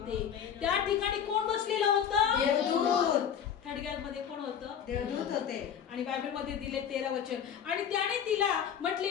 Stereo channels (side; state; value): right; quieter; 8.3 dB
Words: त्या ठिकाणी कोण बसलेलं होतं? देवदूत. थडग्यामध्ये कोण होतं? देवदूत होते. आणि बायबलमध्ये दिले 13 वचन, आणि त्याने तिला म्हटले,